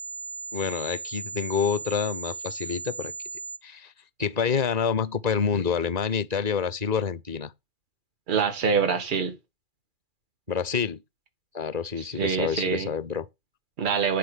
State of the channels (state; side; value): late; left; 2.4 ms